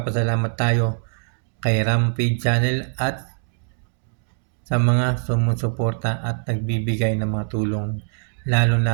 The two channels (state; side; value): silent; left; digital silence